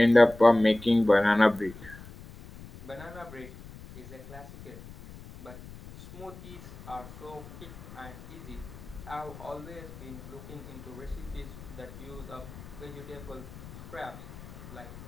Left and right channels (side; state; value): left; noise; rumble, 15 dB below the sound